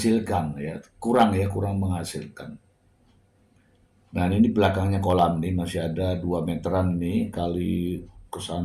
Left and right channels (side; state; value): both; identical; correlation 1.00